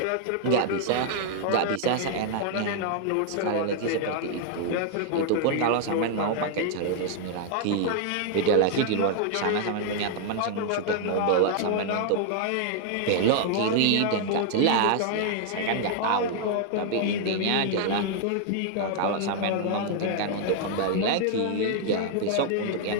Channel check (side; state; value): both; different; correlation 0.00